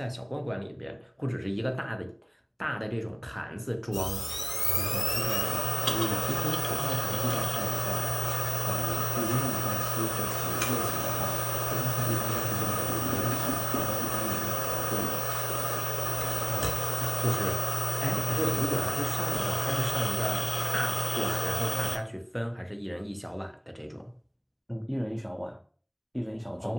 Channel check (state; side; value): identical; both; correlation 1.00